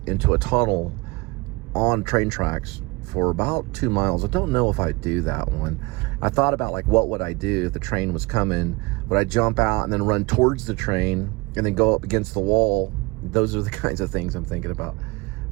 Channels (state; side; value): quieter; left; 24.3 dB